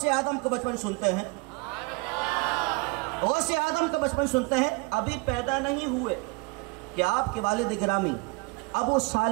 اعظم کا بچپن سنتے ہیں، غوث اعظم کا بچپن سنتے ہیں۔ ابھی پیدا نہیں ہوئے کہ آپ کے والد گرامی ابو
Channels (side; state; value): left; quieter; 28.3 dB